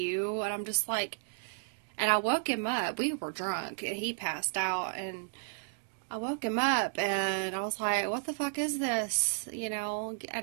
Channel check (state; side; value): silent; left; digital silence